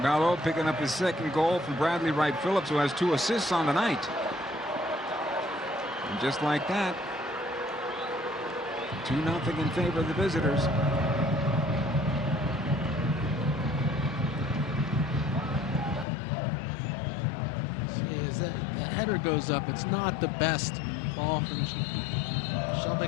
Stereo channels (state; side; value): drops out; right; at 16.1 s